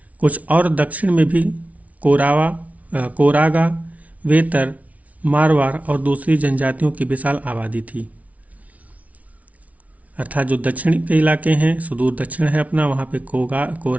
कुछ और दक्षिण में भी कोरागा, वेतर, मारवाड़ और दूसरी जनजातियों की विशाल आबादी थी। अर्थात जो दक्षिण के इलाके हैं, सुदूर दक्षिण है अपना, वहाँ पे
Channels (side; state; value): left; late; 0.069 ms